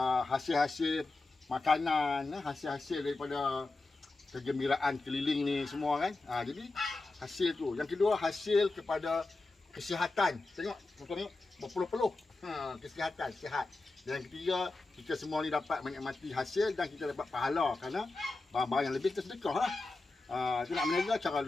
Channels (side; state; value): right; quieter; 3.3 dB